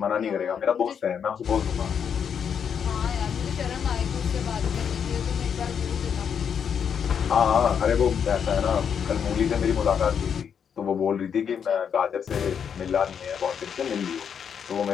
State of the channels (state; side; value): quieter; right; 7.5 dB